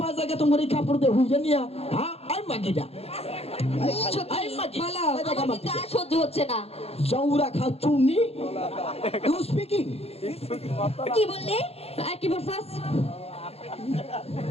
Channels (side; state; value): right; late; 0.29 ms